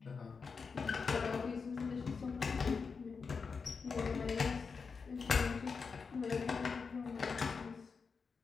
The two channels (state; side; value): quieter; right; 5.2 dB